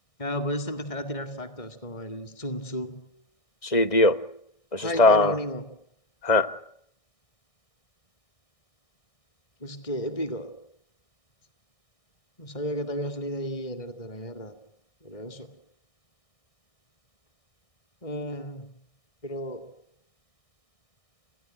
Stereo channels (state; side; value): late; right; 1.6 ms